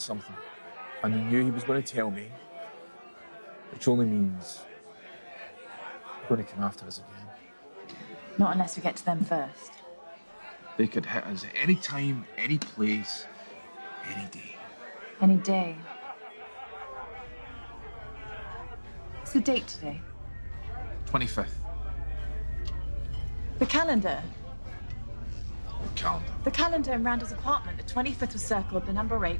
and they knew he was going to tell me, which only means they're going to come after us again. Not unless we get to them first. They could hit us at any time, any place, any day. Any day. What's the date today? 25th. The calendar. Calendar. The calendar in Randall's apartment. The 25th was circled, the number 8.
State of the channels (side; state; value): both; inverted; correlation -1.00